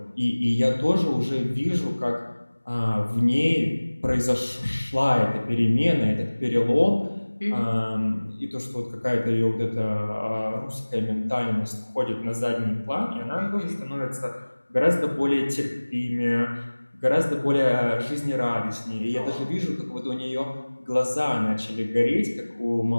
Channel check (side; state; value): both; inverted; correlation -1.00